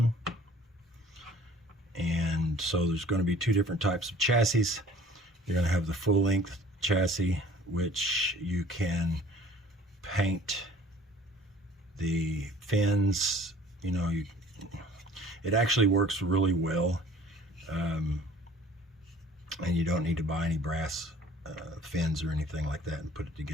And so there's going to be two different types of chassis. You're going to have the full length chassis, which you can paint the fins. You know, it actually works really well, and you don't need to buy any brass fins or anything like that and put it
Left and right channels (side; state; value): both; normal; correlation 0.50